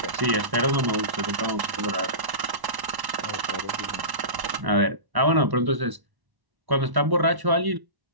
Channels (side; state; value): left; late; 1.1 ms